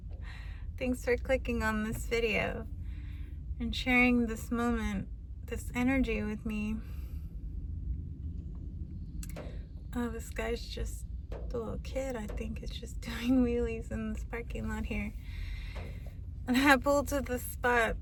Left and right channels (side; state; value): both; identical; correlation 1.00